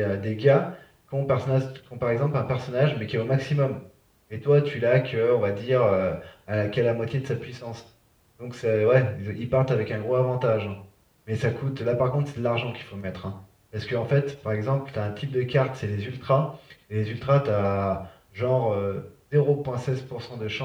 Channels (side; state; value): both; identical; correlation 1.00